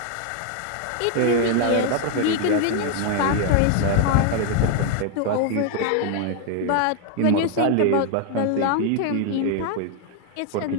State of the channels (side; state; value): both; different; correlation 0.00